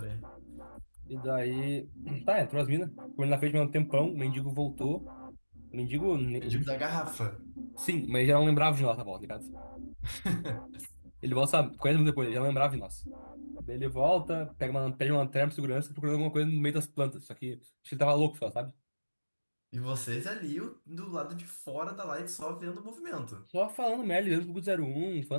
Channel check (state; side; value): inverted; both; correlation -1.00